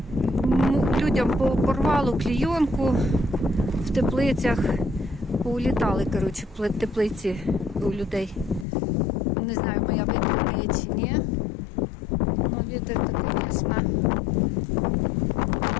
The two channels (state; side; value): drops out; right; at 8.7 s